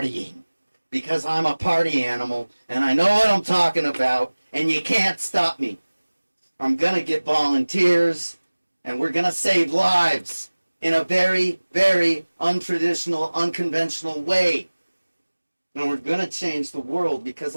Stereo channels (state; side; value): inverted; both; correlation -1.00